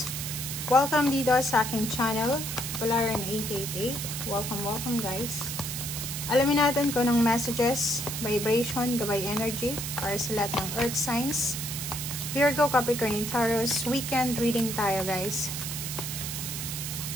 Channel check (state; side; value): noise; right; hiss, 5 dB below the sound